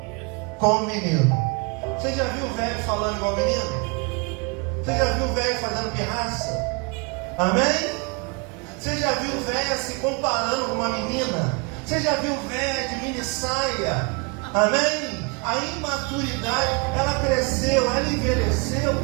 como menino. Você já viu o velho falando igual menino? Você já viu o velho fazendo pirraça? Amém? Você já viu o velho se comparando com uma menina? Você já viu o velho de mini saia? Amém? A imaturidade, ela cresceu, ela envelheceu,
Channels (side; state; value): left; quieter; 31.5 dB